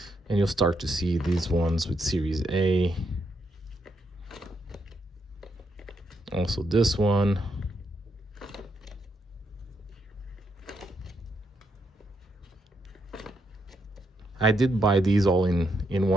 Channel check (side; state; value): both; normal; correlation 0.78